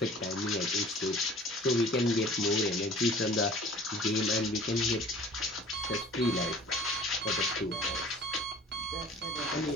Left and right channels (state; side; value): normal; both; correlation 0.47